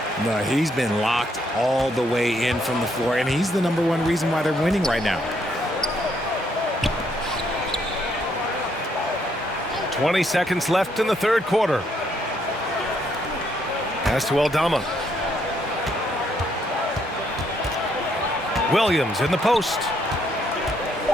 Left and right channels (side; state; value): both; normal; correlation 0.72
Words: No, he's been locked all the way in from the floor, and he's the #1 reason why they're winning right now. 20 seconds left in the third quarter. Pass to Aldama. Williams in the post.